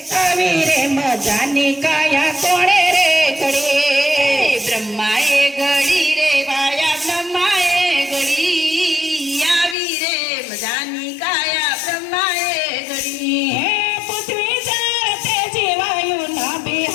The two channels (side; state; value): right; drops out; at 9.8 s